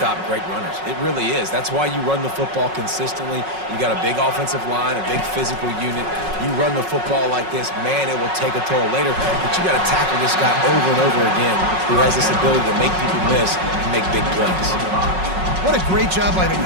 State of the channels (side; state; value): left; late; 5.4 ms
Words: great runners. It really is. That's why you run the football consistently. You got a big offensive line, a big physical unit. You run the football like this, man, it will take a toll later. But you got to tackle this guy over and over again who has this ability to make people miss and make big plays. What a great job by the